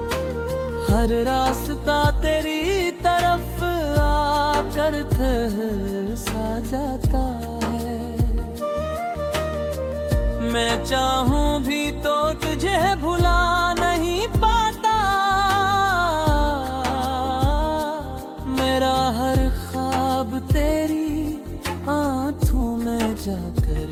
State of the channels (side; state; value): both; identical; correlation 1.00